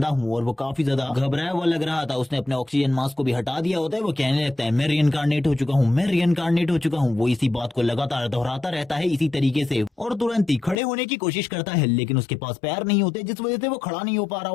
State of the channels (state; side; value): drops out; right; at 10.8 s